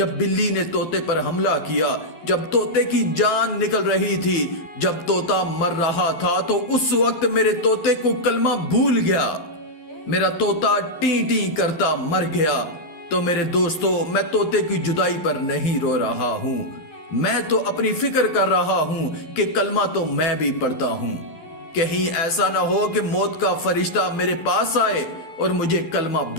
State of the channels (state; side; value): late; right; 12 ms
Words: बिल्ली ने तोते पर हमला किया, जब तोते की जान निकल रही थी, जब तोता मर रहा था, तो उस वक्त मेरे तोते को कलमा भूल गया। मेरा तोता टी टी करता मर गया। तो मेरे दोस्तों, मैं तोते की जुदाई पर नहीं रो रहा हूं, मैं तो अपनी फिक्र कर रहा हूं कि कलमा तो मैं भी पढ़ता हूं। कहीं ऐसा ना हो कि मौत का फरिश्ता मेरे पास आए और मुझे कलमा